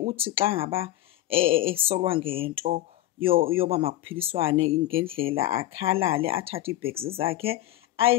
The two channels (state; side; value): quieter; right; 15.0 dB